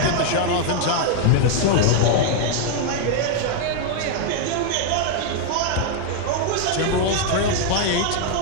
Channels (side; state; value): both; different; correlation 0.00